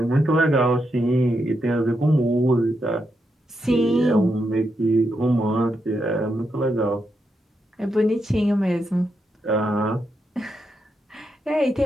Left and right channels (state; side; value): normal; both; correlation 0.83